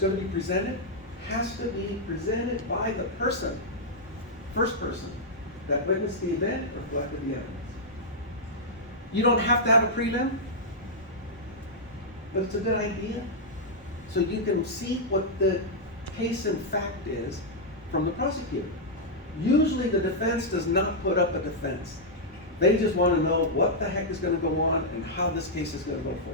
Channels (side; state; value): both; normal; correlation -0.06